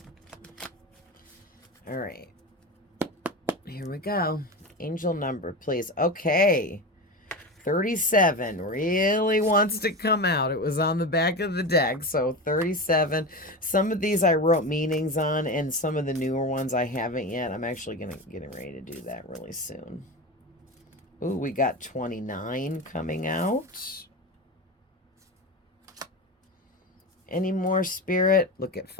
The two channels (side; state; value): both; normal; correlation 0.23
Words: All right. Here we go. Angel number, please. Okay. 37 really wants to come out. It was on the back of the deck. So 37. Some of these I wrote meanings on, and some of the newer ones I haven't yet. I'm actually getting ready to do that really soon. Ooh, we got 29 coming out. Any more, Spirit? Look at